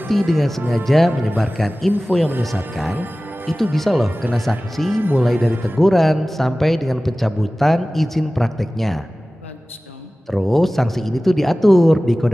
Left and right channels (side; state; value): both; normal; correlation 0.97